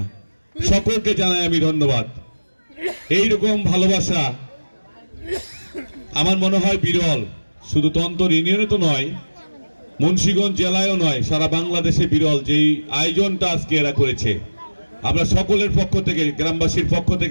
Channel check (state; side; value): inverted; both; correlation -1.00